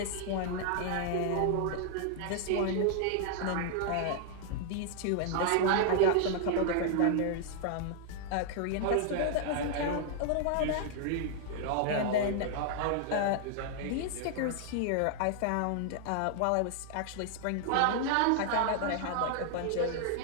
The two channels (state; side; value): different; both; correlation -0.01